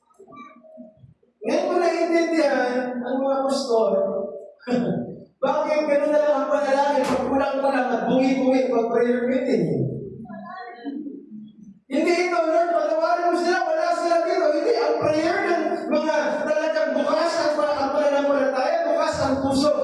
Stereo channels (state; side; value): identical; both; correlation 1.00